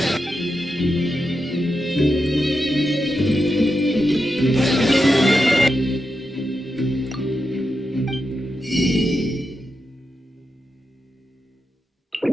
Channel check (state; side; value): normal; both; correlation 0.87